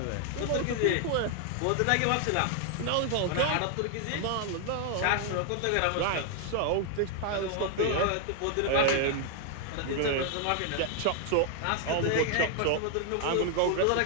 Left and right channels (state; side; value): different; both; correlation 0.00